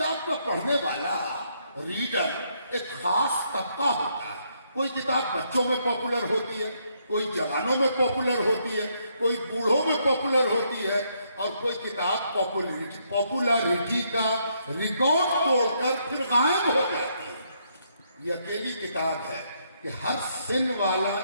کا پڑھنے والا ریڈر ایک خاص طبقہ ہوتا ہے. کوئی کتاب بچوں میں پاپولر ہوتی ہے, کوئی جوانوں میں پاپولر ہوتی ہے, کوئی بوڑھوں میں پاپولر ہوتی ہے, اور کوئی کتاب پاپولرٹی کا ریکارڈ توڑ کر پھر غائب ہو جاتی ہے. یہ اکیلی کتاب ہے کہ ہر سن والا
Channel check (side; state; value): both; inverted; correlation -0.74